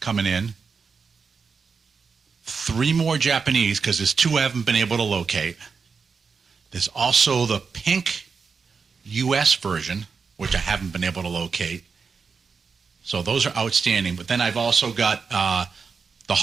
in. 3 more Japanese, because there's 2 I haven't been able to locate. There's also the pink US version, which I haven't been able to locate. So those are outstanding. But then I've also got the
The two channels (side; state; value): left; quieter; 5.3 dB